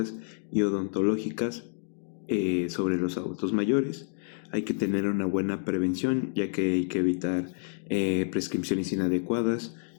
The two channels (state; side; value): silent; right; digital silence